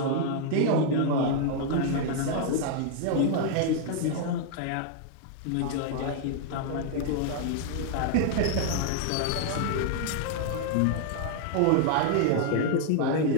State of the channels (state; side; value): different; both; correlation 0.00